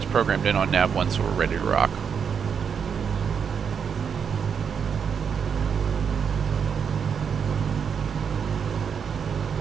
programmed in on nav 1 so we're ready to rock.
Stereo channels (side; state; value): left; quieter; 6.9 dB